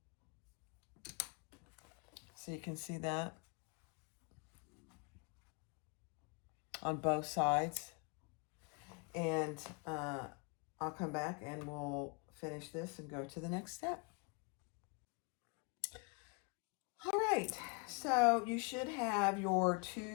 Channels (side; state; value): right; quieter; 32.8 dB